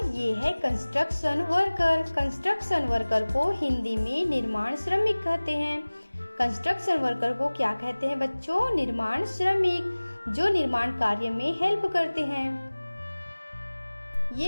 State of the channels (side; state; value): both; inverted; correlation -1.00